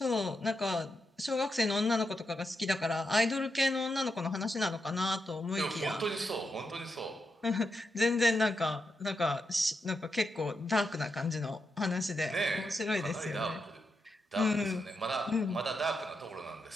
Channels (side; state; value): both; normal; correlation 0.85